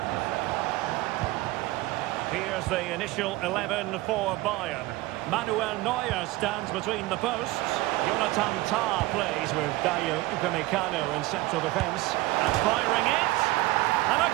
Here's the initial 11 for Bayern. Manuel Neuer stands between the posts. Jonathan Tah plays with Dayo Upamecano in central defence. And firing it. And a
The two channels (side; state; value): left; quieter; 19.3 dB